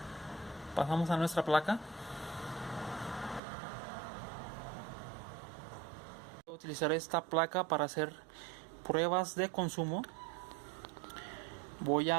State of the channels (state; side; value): drops out; left; at 3.4 s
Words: nuestra placa. Voy a utilizar esta placa para hacer pruebas de consumo. Voy